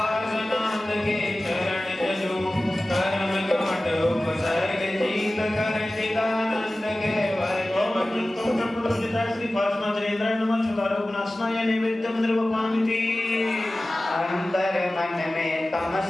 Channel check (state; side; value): normal; both; correlation 0.96